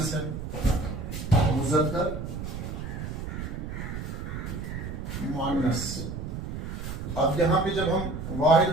ہے, مذکر مؤنث. اب یہاں پہ جب ہم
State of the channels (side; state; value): right; noise; rumble, 6 dB below the sound